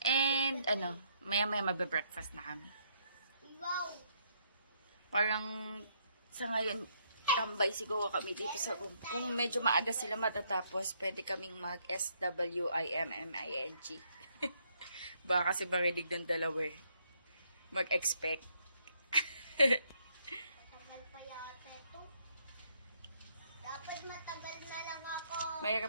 And, maya-maya magbe-breakfast na kami. Parang, sa ngayon, tambay siguro kami dito sa room. Kung medyo maaga sila matatapos, pwede kaming mag-SWIMMING. Baka kasi marinig ng dalawa eh. Mag-expect. Matagal pa yata ito. Dapat matagal na lang ako.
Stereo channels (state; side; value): inverted; both; correlation -0.71